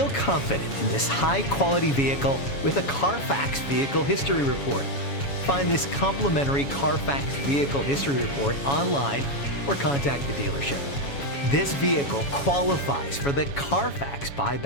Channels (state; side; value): late; right; 7.1 ms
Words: confident in this high-quality vehicle with a Carfax Vehicle History Report. Find this complimentary Carfax Vehicle History Report online or contact the dealership. This vehicle qualifies for the Carfax